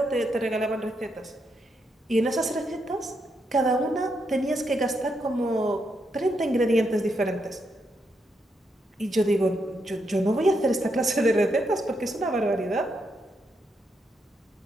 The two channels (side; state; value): both; normal; correlation 0.81